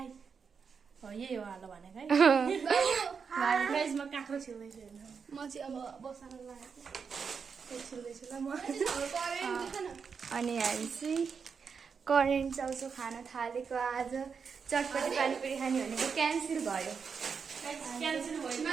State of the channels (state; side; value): quieter; left; 6.0 dB